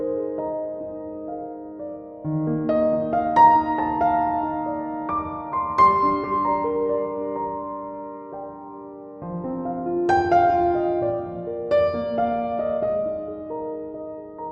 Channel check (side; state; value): both; identical; correlation 1.00